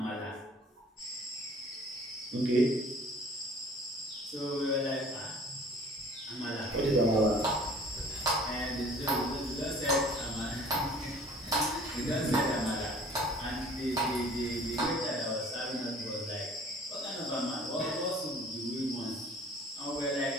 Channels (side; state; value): both; normal; correlation 0.50